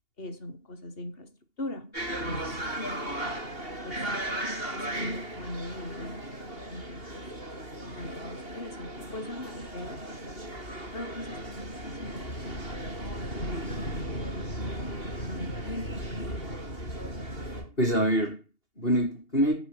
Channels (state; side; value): late; right; 2.8 ms